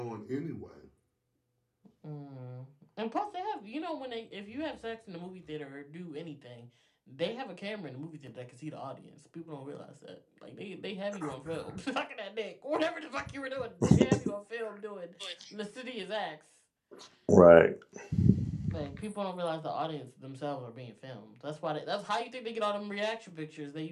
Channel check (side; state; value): both; identical; correlation 1.00